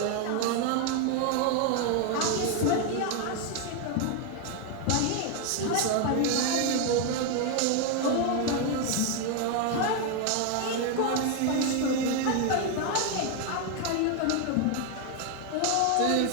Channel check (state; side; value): different; both; correlation 0.01